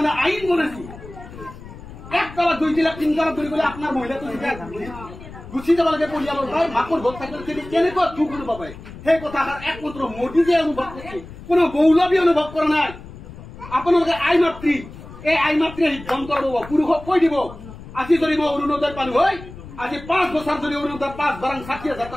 আইন বনাইছে 1 তলা 2 তলা 3 তলা ধৰি গ'লে আপোনাৰ মহিলাটো গুচি যাব লাগে পৰিয়ালৰ ভাই মাকৰ ভোট থাকিলে কেনেকুৱা দুখ অনুভৱ হয় সেই কথাষাৰ একমাত্ৰ মোদী যে অনুভৱ কৰিছে কোনো মৌলবী অনুভৱ কৰা নাই আপোনালোকে আই মাতৃ এই আই মাতৃয়ে সিদ্ধান্ত ল'ব পুৰুষক কৈ দিব আজি যদি মই অৰুণোদয় পালো হয় আজি 5 বছৰ যদি অৰুণোদয় 5 বাৰাং 60,000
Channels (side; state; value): left; noise; rumble, 15 dB below the sound